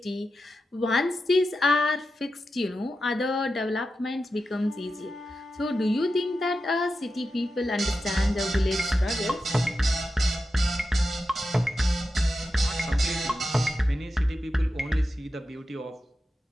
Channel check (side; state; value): both; normal; correlation 0.90